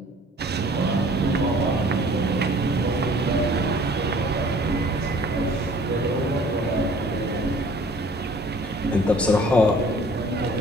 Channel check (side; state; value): both; normal; correlation 0.53